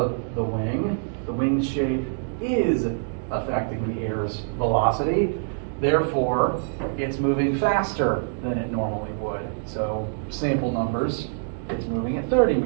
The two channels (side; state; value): left; silent; digital silence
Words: the wing shape is affecting the air's velocity. Therefore, it's moving faster than it normally would. So sample numbers, it's moving at 30